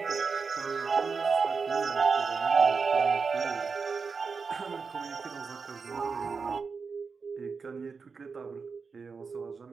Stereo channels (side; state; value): left; quieter; 5.1 dB